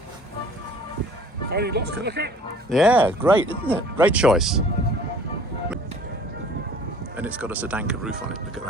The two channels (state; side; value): normal; both; correlation 0.50